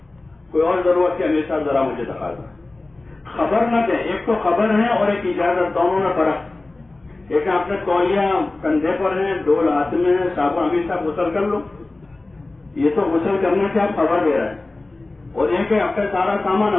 کوئی اور ضرورت ہے، امیر صاحب ذرا مجھے تقاضا، خبر نہ دیں، ایک تو خبر ہے اور ایک اجازت، دونوں میں فرق، ایک آپ نے تولیہ کندھے پر ہے، ڈول ہاتھ میں ہے، صاحب امیر صاحب غسل کر لو. یہ تو غسل کرنے سے آپ خبر دے رہے ہیں. اور یہ کہ آپ کا سارا سامان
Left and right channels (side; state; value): right; quieter; 3.1 dB